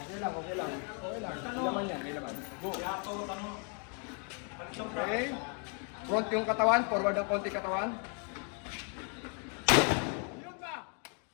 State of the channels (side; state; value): right; quieter; 39.2 dB